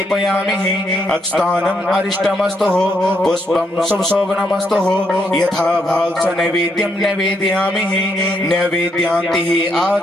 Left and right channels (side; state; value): both; normal; correlation 0.76